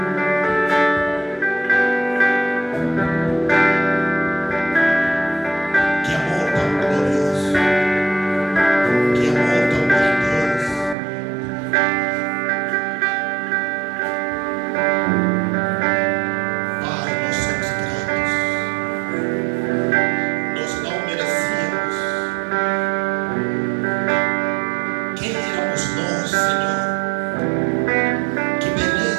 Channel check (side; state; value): left; drops out; at 11.0 s